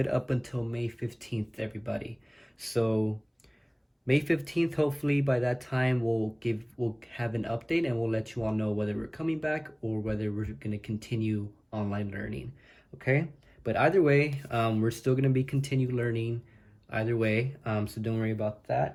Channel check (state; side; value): identical; both; correlation 1.00